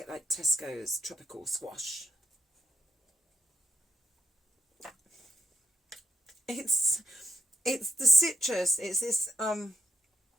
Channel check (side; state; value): both; normal; correlation 0.74